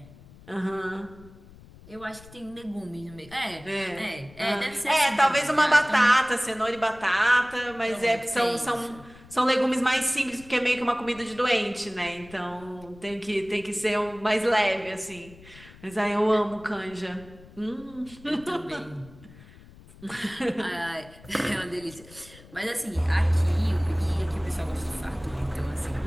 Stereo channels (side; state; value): left; noise; rumble, 21 dB below the sound